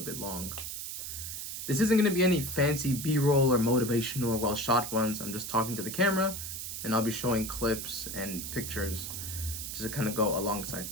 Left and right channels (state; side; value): noise; right; hiss, 6 dB below the sound